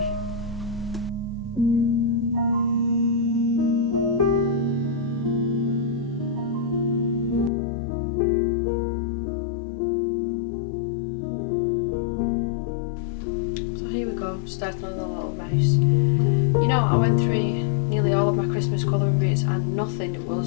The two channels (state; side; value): drops out; right; at 7.5 s